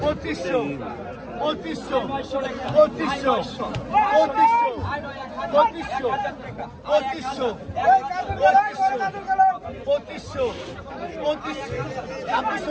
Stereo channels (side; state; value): both; identical; correlation 1.00